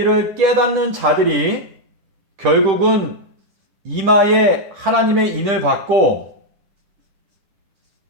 깨닫는 자들이 결국은 이마에 하나님의 인을 받고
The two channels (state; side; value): late; left; 10 ms